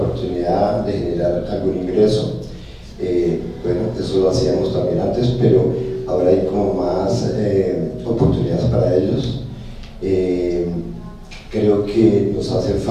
de generar algún ingreso. Bueno, eso lo hacíamos también antes, pero ahora hay como más oportunidades para ellos. Creo que nos hace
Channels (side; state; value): both; identical; correlation 1.00